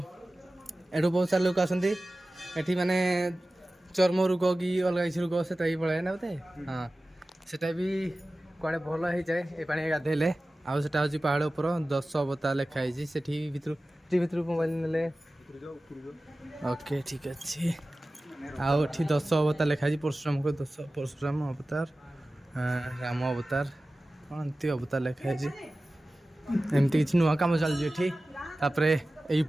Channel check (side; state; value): both; normal; correlation 0.96